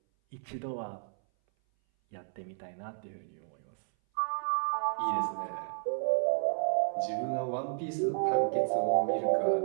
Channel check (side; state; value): left; silent; 56 dB below the other